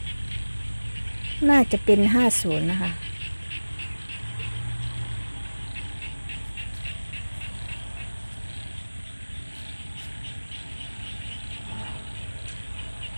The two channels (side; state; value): both; inverted; correlation -1.00